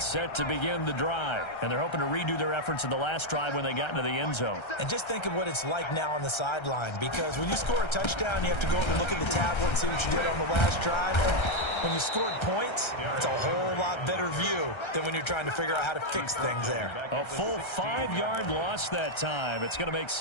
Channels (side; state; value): right; late; 1.3 ms